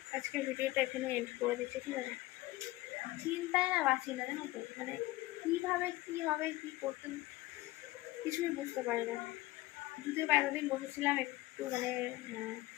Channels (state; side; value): quieter; right; 18.8 dB